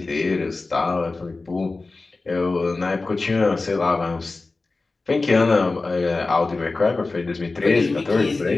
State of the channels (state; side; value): quieter; right; 3.6 dB